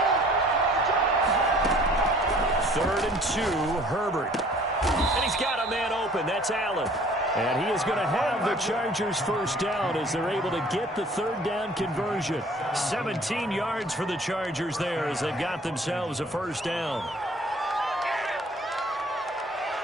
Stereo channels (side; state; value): both; normal; correlation 0.53